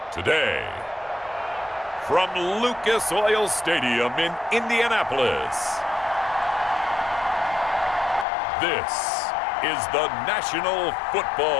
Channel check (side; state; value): right; drops out; at 8.2 s